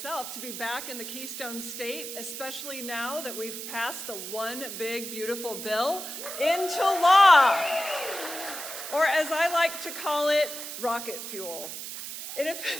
to be back in the Keystone State, especially now that we've passed the One Big Beautiful Bill into law, or as I like to call it, rocket fuel.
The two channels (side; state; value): right; noise; hiss, 8 dB below the sound